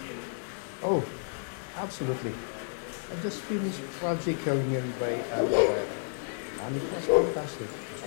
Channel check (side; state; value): right; silent; digital silence